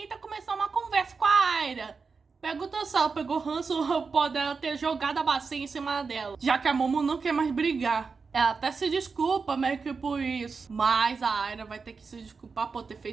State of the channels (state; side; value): quieter; left; 4.9 dB